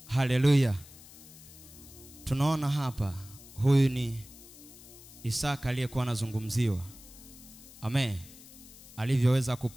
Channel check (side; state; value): left; noise; hiss, 19 dB below the sound